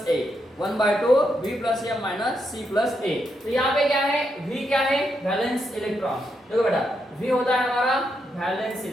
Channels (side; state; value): both; normal; correlation 0.81